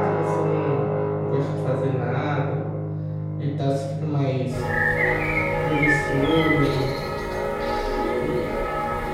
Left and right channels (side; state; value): both; identical; correlation 1.00